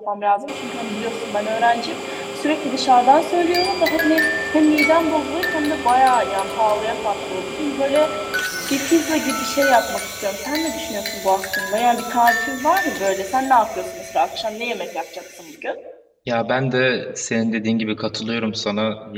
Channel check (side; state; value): both; identical; correlation 1.00